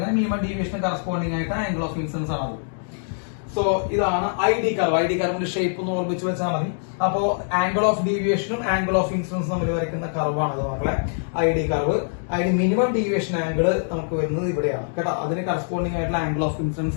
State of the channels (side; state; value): right; silent; digital silence